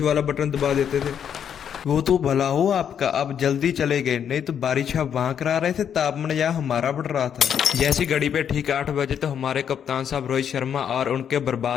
वाला बटन दबा देते थे। वो तो भला हो आपका, अब जल्दी चले गए, नहीं तो बारिश आप वहां करा रहे थे, तापमान यहाँ हमारा बढ़ रहा था। जैसी घड़ी पे ठीक 8 बजे तो हमारे कप्तान साहब रोहित शर्मा और उनके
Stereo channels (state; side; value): quieter; right; 8.5 dB